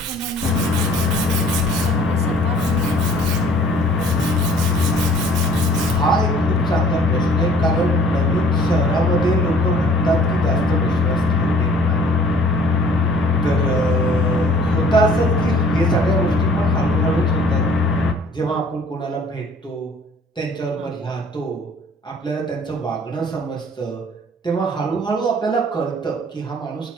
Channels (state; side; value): normal; both; correlation 0.54